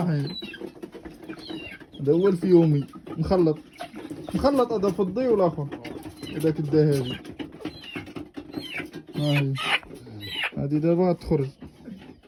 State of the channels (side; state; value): both; identical; correlation 1.00